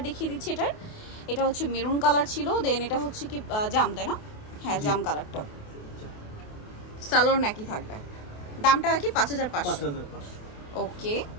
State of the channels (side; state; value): right; late; 28 ms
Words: দেখিয়ে দিচ্ছি, এটার এটা হচ্ছে মেরুন কালার ছিল, দেন এটা হচ্ছে কি জাম তাই না? হ্যাঁ জাম কালারটা, সালোয়ার নাকি থাকবে, দামটা কি 5500। ওকে